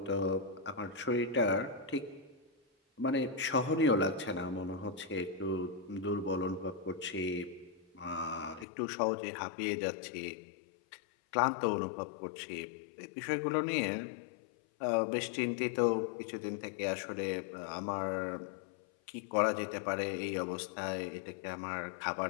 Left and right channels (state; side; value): drops out; right; at 8.7 s